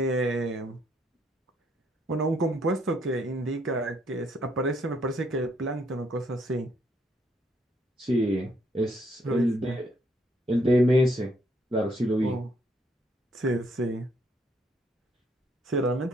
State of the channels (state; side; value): normal; both; correlation 0.70